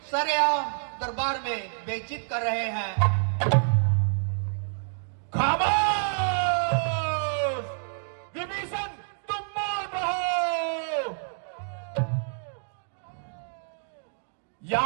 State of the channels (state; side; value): silent; left; digital silence